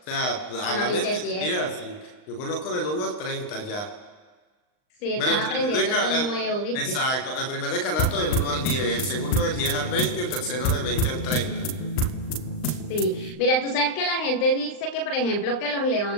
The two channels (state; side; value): late; right; 39 ms